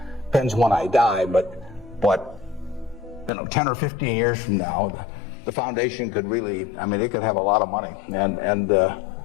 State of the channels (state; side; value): drops out; right; at 3.3 s